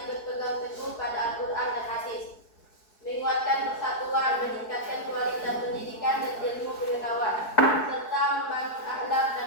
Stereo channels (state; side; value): late; right; 4.7 ms